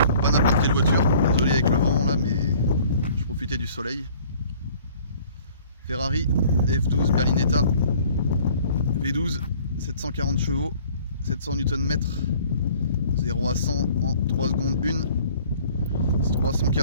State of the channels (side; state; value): both; inverted; correlation -0.53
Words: Pas n'importe quelle voiture, désolé avec le vent là, mais je profitais du soleil. Ferrari F12 Berlinetta V12, 740 chevaux, 700 Nm, 0 à 100 en 3 secondes 1,